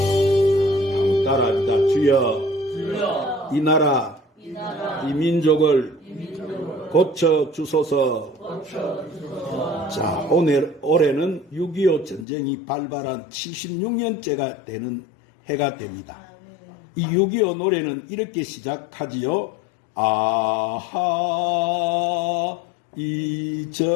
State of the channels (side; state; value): right; drops out; at 12.2 s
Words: 주여, 이 나라, 이 민족을 고쳐 주소서. 자, 올해는 6.25 전쟁이 발발한 76년째가 되는 해가 됩니다. 이 6.25 노래는 이렇게 시작하지요. 아하